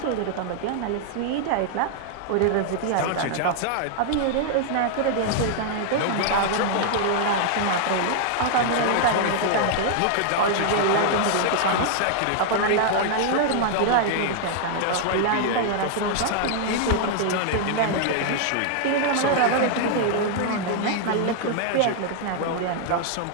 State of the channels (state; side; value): different; both; correlation -0.01